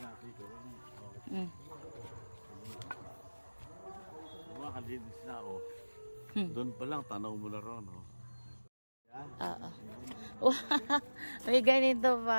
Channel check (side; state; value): both; inverted; correlation -1.00